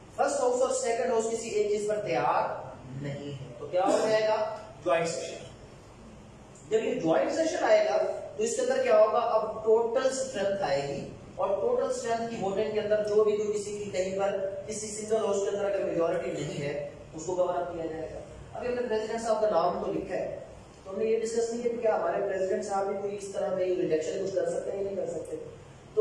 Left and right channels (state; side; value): identical; both; correlation 1.00